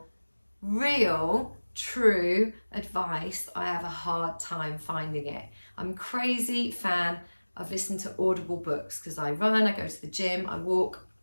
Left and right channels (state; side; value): inverted; both; correlation -1.00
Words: real, true advice, I have a hard time finding it. I'm a crazy fan of listening to Audible books because I run, I go to the gym, I walk